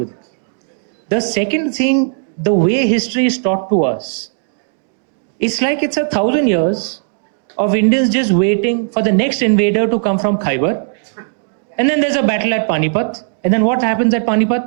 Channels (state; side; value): silent; left; 69 dB below the other